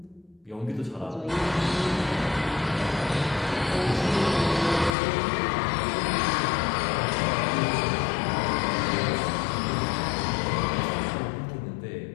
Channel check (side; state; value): right; drops out; at 4.9 s